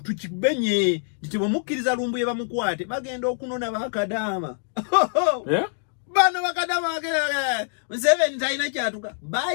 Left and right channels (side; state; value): right; silent; digital silence